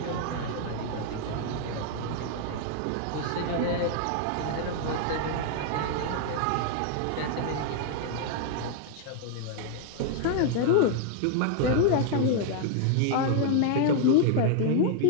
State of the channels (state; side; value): different; both; correlation 0.00